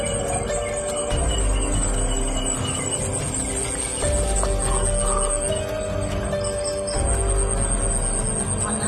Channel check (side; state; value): both; identical; correlation 1.00